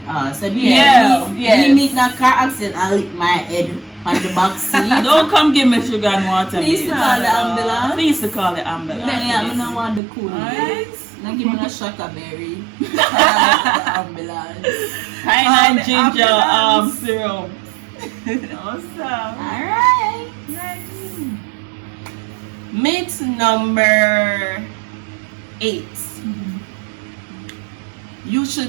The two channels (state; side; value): drops out; left; at 10.0 s